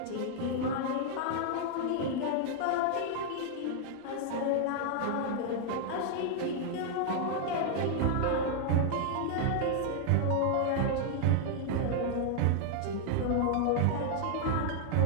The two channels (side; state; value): both; different; correlation 0.00